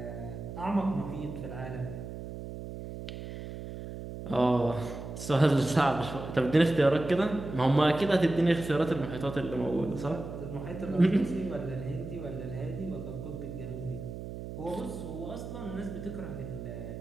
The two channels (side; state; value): right; noise; hum, 9 dB below the sound